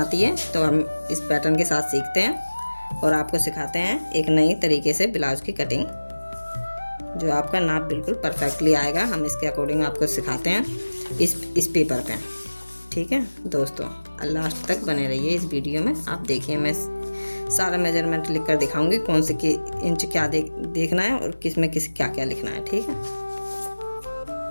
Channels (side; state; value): both; inverted; correlation -1.00